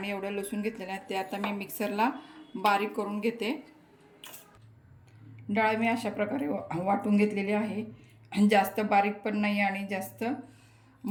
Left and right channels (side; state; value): both; identical; correlation 1.00